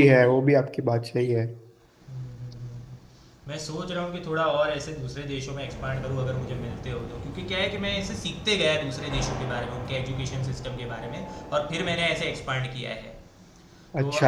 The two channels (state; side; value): identical; both; correlation 1.00